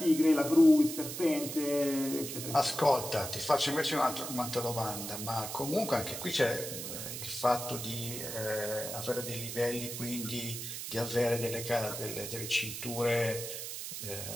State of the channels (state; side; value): noise; right; hiss, 7 dB below the sound